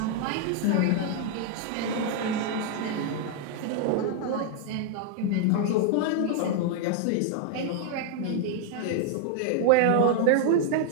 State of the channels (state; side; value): different; both; correlation 0.00